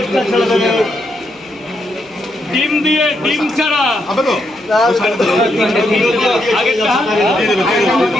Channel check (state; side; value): noise; right; hum, 30 dB below the sound